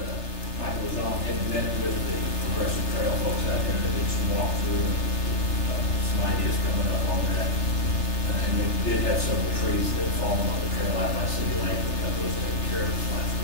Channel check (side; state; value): right; late; 3.3 ms